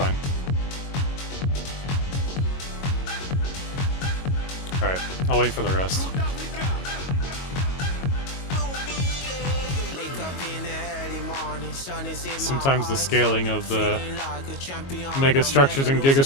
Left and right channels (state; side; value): late; right; 22 ms